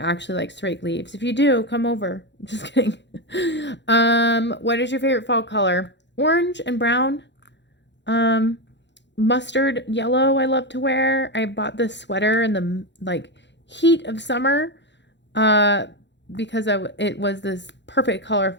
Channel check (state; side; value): late; right; 0.52 ms